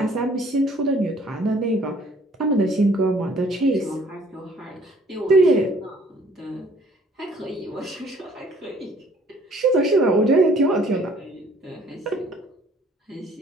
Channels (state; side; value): normal; both; correlation 0.57